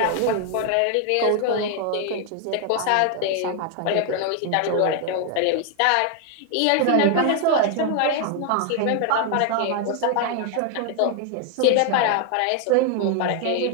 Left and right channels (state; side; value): different; both; correlation 0.00